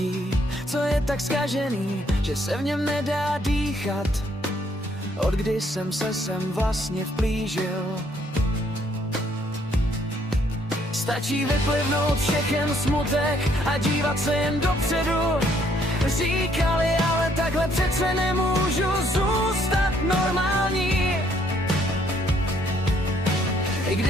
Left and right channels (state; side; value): normal; both; correlation 0.67